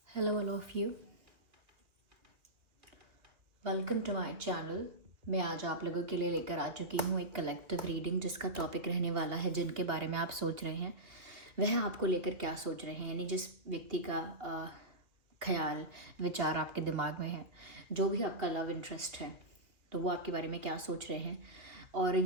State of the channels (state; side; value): late; left; 2.2 ms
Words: Hello all of you. Welcome to my channel. मैं आज आप लोगों के लिए लेकर आ चुकी हूँ एक कलेक्टिव रीडिंग जिसका टॉपिक रहने वाला है जिनके बारे में आप सोच रहे हैं वह आपको लेकर क्या सोच रहे हैं, यानी जिस व्यक्ति का ख्याल विचार आपके दिमाग में है, जो भी आपका लव इंटरेस्ट है, तो वो आपके बारे में क्या सोच रहे हैं। और